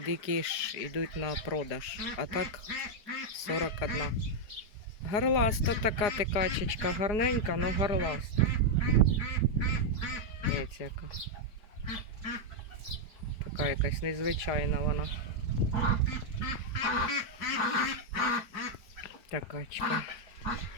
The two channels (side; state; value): right; late; 4.8 ms